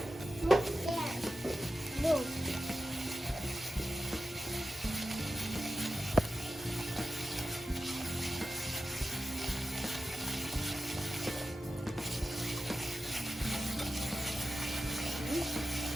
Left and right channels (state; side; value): normal; both; correlation 0.92